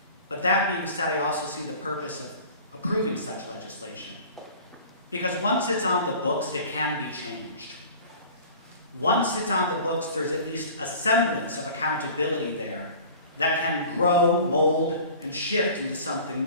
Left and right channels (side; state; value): both; inverted; correlation -0.43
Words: But that being said, I also see the purpose of approving such legislation. Because once it's on the books, it can be changed. Once it's on the books, there's at least a semblance of accountability there that can grow, mold, and shift into something